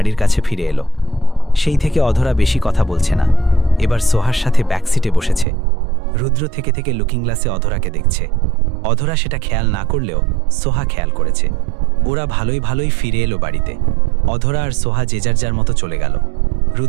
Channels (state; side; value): drops out; left; at 5.5 s